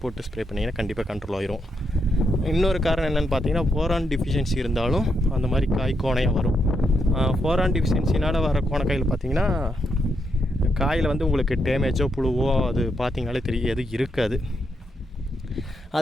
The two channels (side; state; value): both; normal; correlation 0.81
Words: போட்டு ஸ்ப்ரே பண்ணிங்கன்னா கண்டிப்பாக கண்ட்ரோல் ஆயிரும். இன்னொரு காரணம் என்னென்னு பார்த்தீங்கன்னா போரான் டிஃபிஷியன்சி இருந்தாலும் அந்த மாதிரி காய் கோணையாக வரும். போரான் டிஃபிஷியன்சினால் வர கோணக்காயில் பார்த்திங்கன்னா காயில் வந்து உங்களுக்கு டேமேஜோ புழுவோ அது பார்த்திங்கனாலே தெரியும், எது இருக்காது.